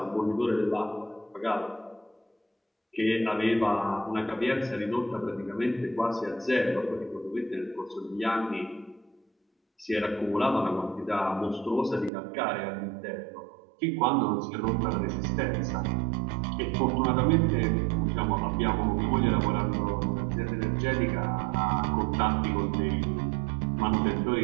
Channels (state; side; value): drops out; left; at 12.1 s